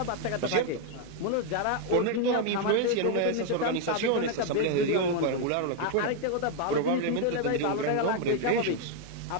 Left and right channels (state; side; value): different; both; correlation 0.00